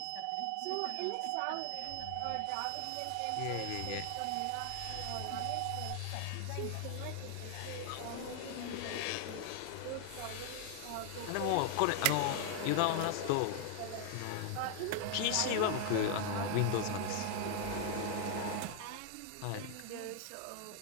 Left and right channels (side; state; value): both; different; correlation 0.00